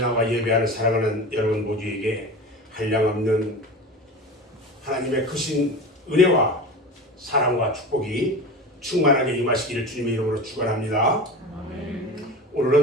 예배하는 사랑하는 여러분 모두에게 한량없는 하나님의 크신 은혜와 사랑과 축복이 충만하게 임하시기를 주님의 이름으로 축원합니다.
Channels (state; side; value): normal; both; correlation 0.31